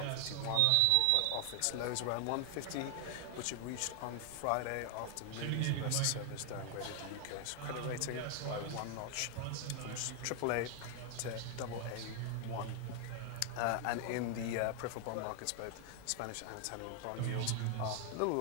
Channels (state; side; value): different; both; correlation 0.00